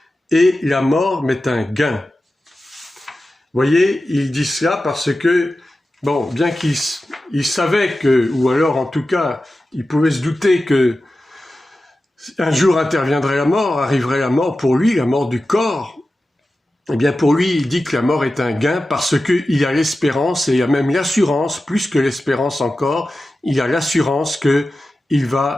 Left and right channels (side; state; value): both; normal; correlation 0.94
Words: et la mort m'est un gain. Voyez, il dit cela parce que, bon, bien qu'il savait que, ou alors en tout cas, il pouvait se douter que un jour interviendrait la mort, arriverait la mort pour lui, la mort du corps. Eh bien, pour lui, il dit que la mort est un gain parce qu'il a l'espérance et il a même l'assurance, plus que l'espérance encore, il a l'assurance qu'il va